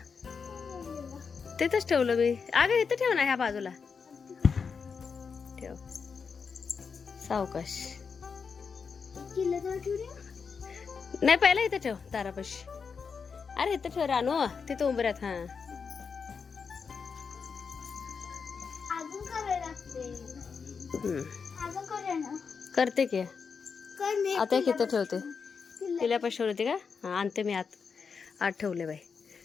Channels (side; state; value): right; quieter; 5.7 dB